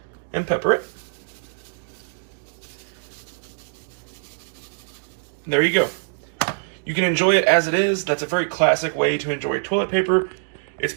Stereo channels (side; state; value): left; silent; digital silence